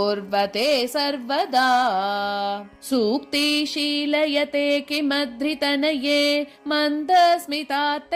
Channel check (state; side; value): identical; both; correlation 1.00